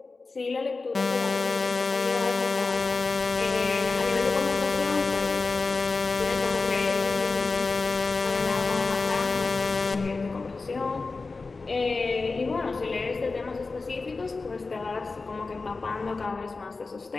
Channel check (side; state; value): right; quieter; 3.9 dB